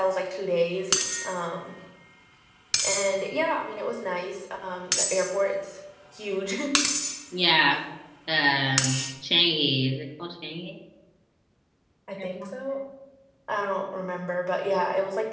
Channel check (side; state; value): both; identical; correlation 1.00